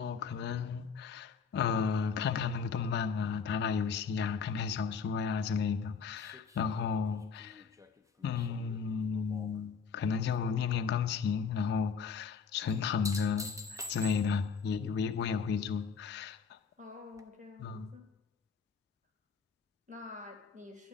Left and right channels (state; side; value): quieter; right; 5.8 dB